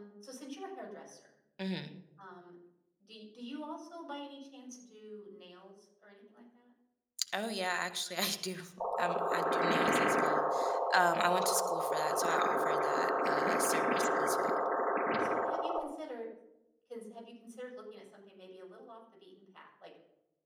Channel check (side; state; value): both; identical; correlation 1.00